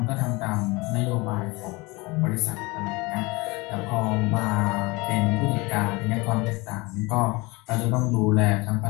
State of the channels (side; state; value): right; quieter; 24.4 dB